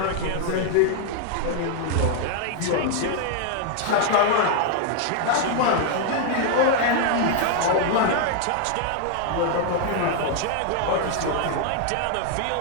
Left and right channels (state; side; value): different; both; correlation 0.00